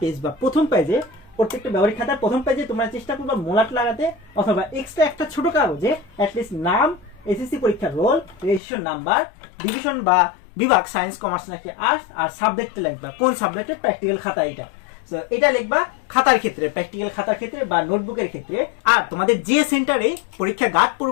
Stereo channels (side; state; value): right; drops out; at 8.6 s